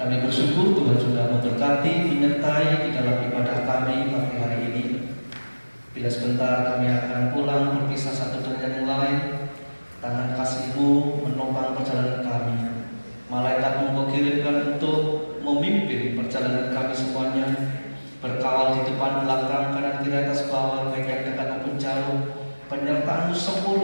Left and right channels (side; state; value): both; inverted; correlation -1.00